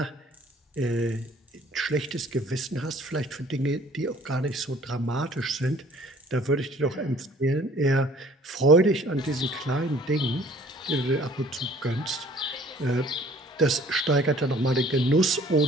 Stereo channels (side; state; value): both; normal; correlation 0.54